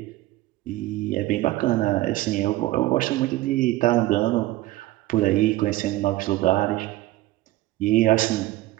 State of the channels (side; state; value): left; quieter; 17.3 dB